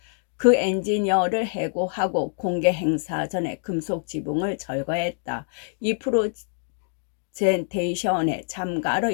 그 엔지니어를 해고하고 공개 행사 전에 금속 지붕을 철거했다. 이 프레젠테이션에 참가로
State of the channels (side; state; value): right; silent; digital silence